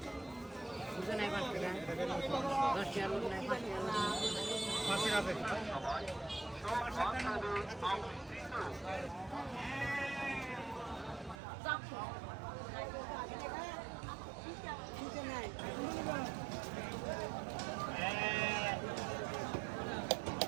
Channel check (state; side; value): drops out; left; at 11.4 s